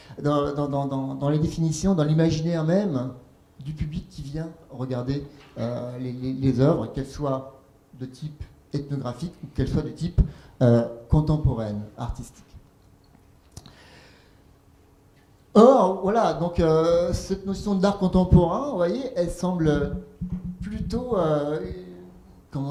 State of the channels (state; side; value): identical; both; correlation 1.00